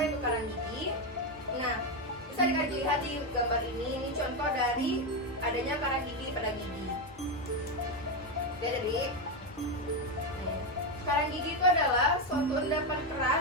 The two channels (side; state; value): both; normal; correlation 0.09